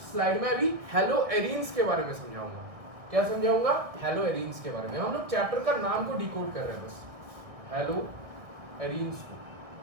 स्लाइड में अभी हेलो एरीन्स के बारे में समझाऊंगा। क्या समझाऊंगा, हेलो एरीन्स के बारे में। हम लोग चैप्टर का नाम को डिकोड कर रहे हैं बस, हेलो एरीन्स को।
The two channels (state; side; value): late; left; 1.6 ms